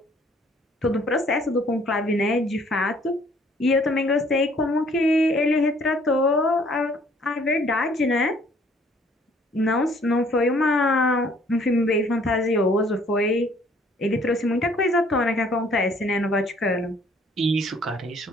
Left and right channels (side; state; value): both; normal; correlation 0.60